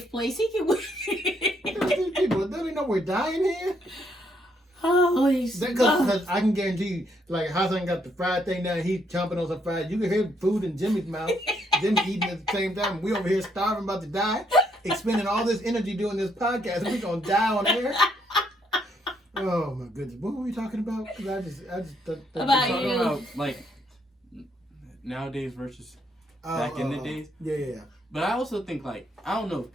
place. He can wait. These people, don't they know we're dying here? Holy smokes. Because I can guarantee you, like Hassan got the fried thing down, he's chomping on some fries. You can hear food in Jimmy's mouth. Jimmy eating at the same time. We over here starving, about to die, expending all this energy doing this podcast, and we gonna die on air. Oh my goodness, what were we talking about? Because I just About Talking you. about like nowadays versus back in the days. Yeah. But I also think like I don't know if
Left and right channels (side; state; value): both; normal; correlation 0.72